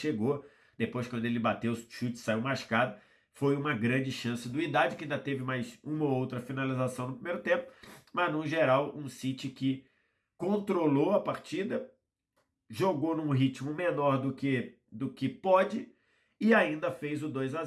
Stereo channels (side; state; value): both; identical; correlation 1.00